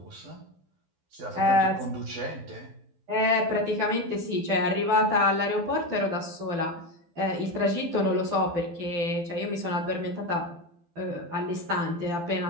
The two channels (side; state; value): left; late; 12 ms